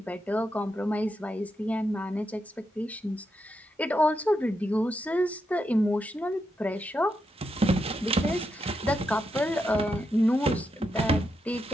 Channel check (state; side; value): normal; both; correlation 0.84